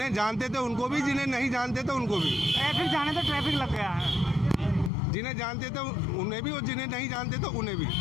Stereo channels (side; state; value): right; drops out; at 4.9 s